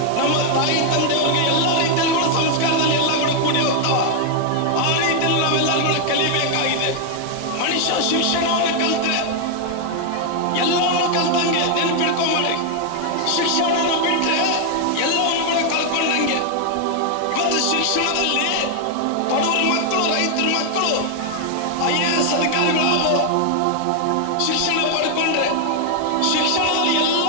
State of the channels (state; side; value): different; both; correlation 0.00